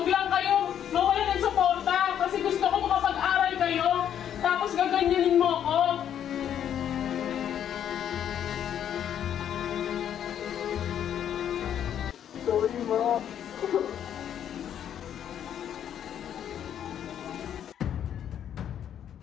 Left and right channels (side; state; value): right; quieter; 9.7 dB